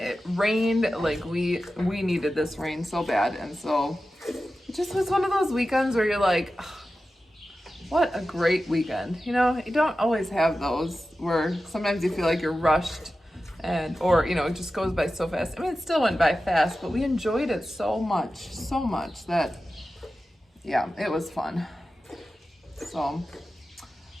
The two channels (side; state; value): both; normal; correlation 0.93